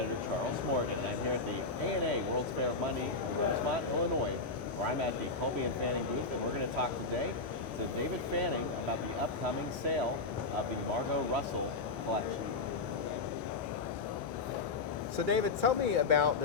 Charles Morgan, and I'm here at the ANA World's Fair of Money in Rosemont, Illinois, where I'm at the Kolbe Fanning booth, and we're going to talk today to David Fanning about the upcoming sale of the Margo Russell collection. So David, tell me about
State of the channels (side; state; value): right; quieter; 3.9 dB